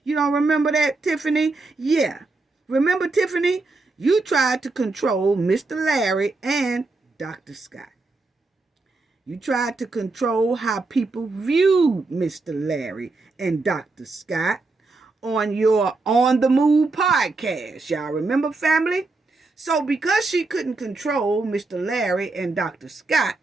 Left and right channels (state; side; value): quieter; left; 3.5 dB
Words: You don't remember that, Tiffany? Yeah. Remember, Tiffany? You tried to control Mr. Larry and Dr. Scott. You tried to control how people viewed Mr. Larry and Dr. Scott on your On the Move podcast. Y'all remember, family? So because she couldn't control Mr. Larry and Dr. Scott,